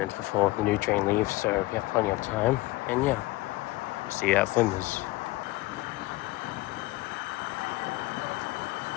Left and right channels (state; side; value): quieter; right; 20.1 dB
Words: before the new train leaves, so we have plenty of time. And yeah, see you at Flinders.